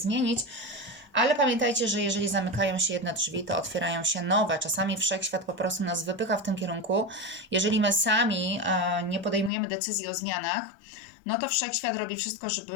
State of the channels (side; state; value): right; drops out; at 9.5 s